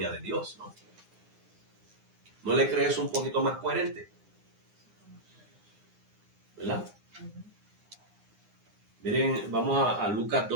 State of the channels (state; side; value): late; left; 9.7 ms